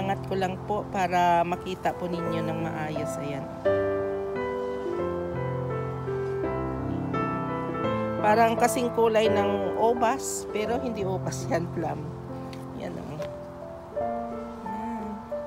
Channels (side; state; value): both; identical; correlation 1.00